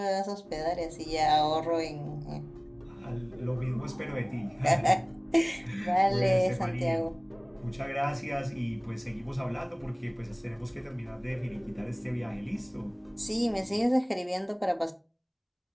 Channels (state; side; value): identical; both; correlation 1.00